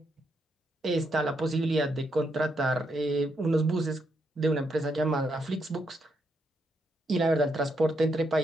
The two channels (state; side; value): normal; both; correlation 0.79